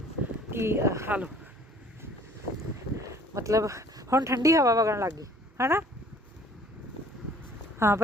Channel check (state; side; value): normal; both; correlation 0.54